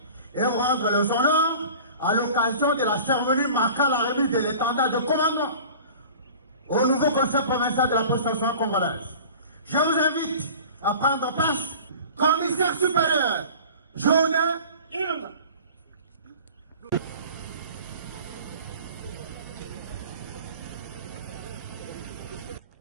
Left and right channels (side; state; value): both; inverted; correlation -0.41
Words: et vous rendre les honneurs à l'occasion de la cérémonie marquant la remise de l'étendard de commandement au nouveau conseil provincial de la prestation congolaise. Je vous invite à prendre place, commissaire supérieur, Jorodé Ilunga.